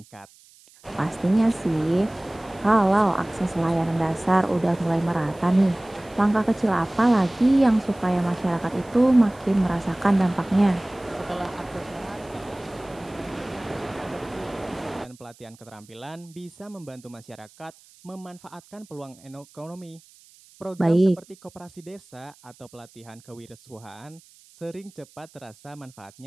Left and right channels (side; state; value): right; noise; hiss, 26 dB below the sound